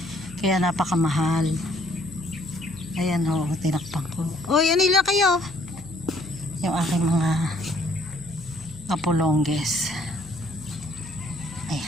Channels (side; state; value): left; noise; hum, 18 dB below the sound